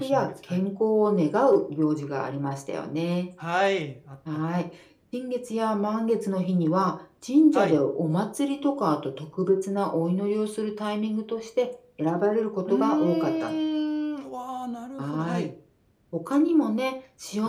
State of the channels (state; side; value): identical; both; correlation 1.00